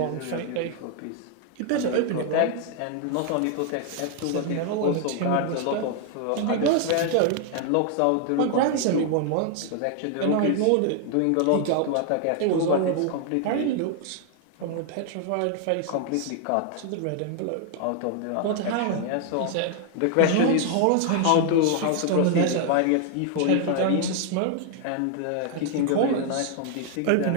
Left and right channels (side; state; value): both; different; correlation 0.00